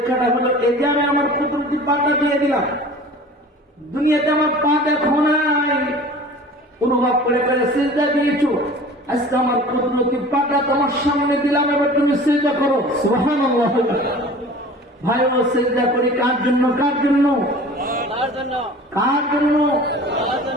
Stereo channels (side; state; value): both; normal; correlation 0.42